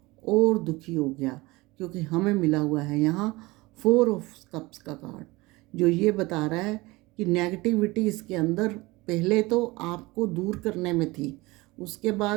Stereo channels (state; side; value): quieter; left; 22.0 dB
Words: और दुखी हो गया, क्योंकि हमें मिला हुआ है यहाँ 4 ऑफ कप्स का कार्ड, जो ये बता रहा है कि नेगेटिविटी इसके अंदर पहले तो आपको दूर करने में थी, उसके